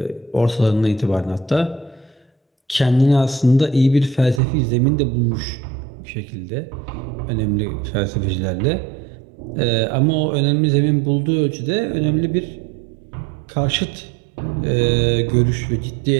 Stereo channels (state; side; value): drops out; left; at 4.4 s